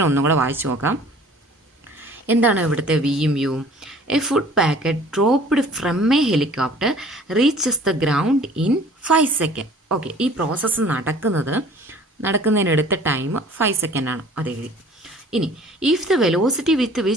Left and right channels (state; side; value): normal; both; correlation 0.50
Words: ഒന്നും കൂടെ വായിച്ചു നോക്കാം. എന്താണ് ഇവിടുത്തെ വിയും യുവും? A food packet dropped from a helicopter reaches the ground in 5 seconds. Okay, ഈ പ്രോസസ്സ് നടക്കുന്നതിനെടുത്ത ടൈം 5 seconds ആണ്, അത് എഴുതി. ഇനി if the velocity with